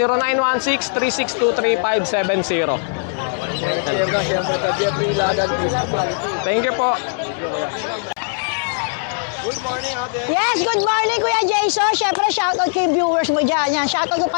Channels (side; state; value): right; silent; digital silence